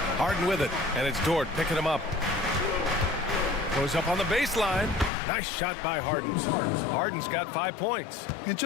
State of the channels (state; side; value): drops out; right; at 5.1 s